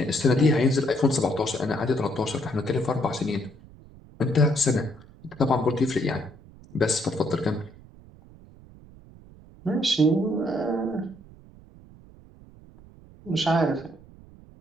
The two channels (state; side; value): noise; right; rumble, 22 dB below the sound